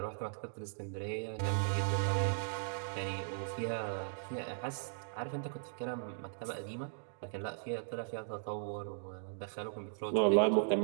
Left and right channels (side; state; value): left; silent; digital silence